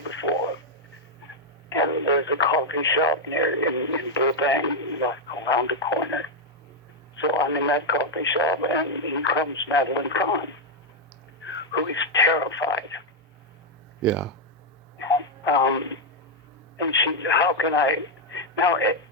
And there's a coffee shop in Burbank, like around the corner. So I'm in that coffee shop, and in comes Madeline Kahn, who is terrified. Yeah. And she, how can I, now,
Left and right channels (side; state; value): both; normal; correlation 0.01